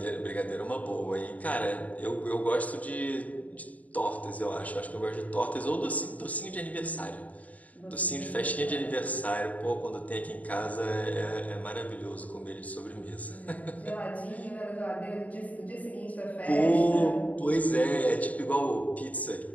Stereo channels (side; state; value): right; late; 0.071 ms